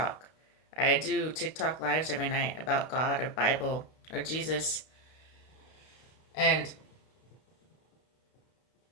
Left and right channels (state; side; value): late; right; 32 ms